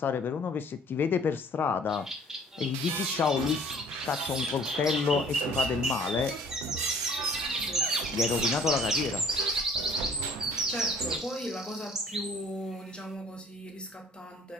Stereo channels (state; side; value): normal; both; correlation 0.54